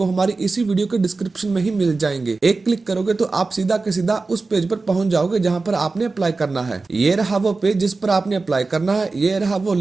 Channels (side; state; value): left; quieter; 3.8 dB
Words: हमारी इसी वीडियो के डिस्क्रिप्शन में ही मिल जाएंगे। एक क्लिक करोगे तो आप सीधा के सीधा उस पेज पर पहुंच जाओगे जहां पर आपने अप्लाई करना है। ये रहा वो पेज जिस पर आपने अप्लाई करना है। ये रहा वो